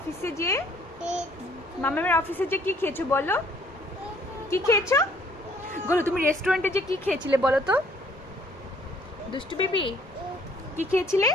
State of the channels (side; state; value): both; normal; correlation 0.61